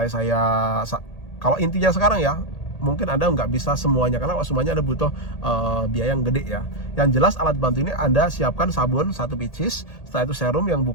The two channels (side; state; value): right; late; 1.8 ms